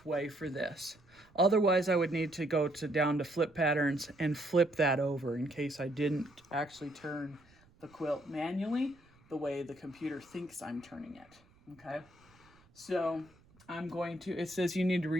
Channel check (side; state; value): right; noise; rumble, 29 dB below the sound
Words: way for this. Otherwise, I would need to go down to flip patterns and flip that over in case I didn't actually turn the quilt manually the way the computer thinks I'm turning it, okay? So it says you need to